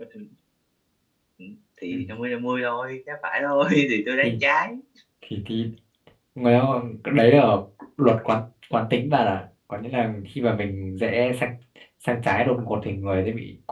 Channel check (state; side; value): identical; both; correlation 1.00